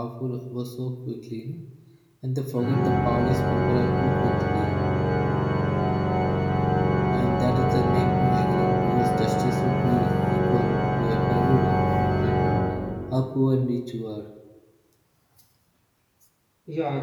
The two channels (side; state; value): both; identical; correlation 1.00